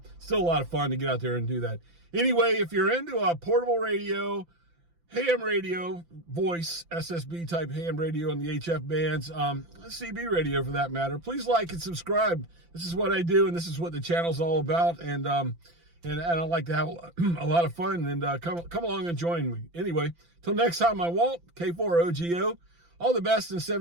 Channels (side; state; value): left; late; 5.9 ms